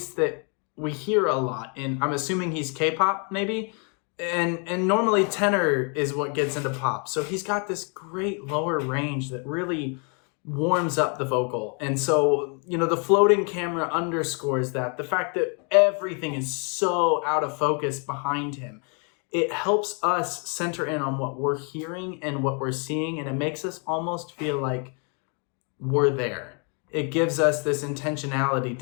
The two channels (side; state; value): right; quieter; 37.3 dB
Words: that we hear a lot in, I'm assuming he's K-pop maybe. And normally tenor is what gets into pop. So he's got this great lower range that really warms up the vocal. And so, you know, the floating camera underscores that. The fact that everything is so out of focus behind him. It helps us center in on what we're hearing and what we're seeing. And it makes us almost feel like we're there. It gives us this intentionality.